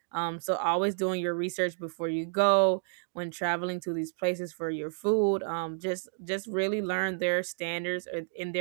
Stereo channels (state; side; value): silent; left; 58 dB below the other